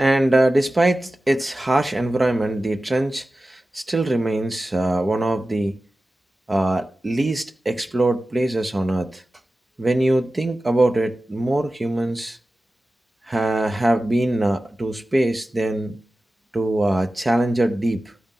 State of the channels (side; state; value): both; normal; correlation 0.95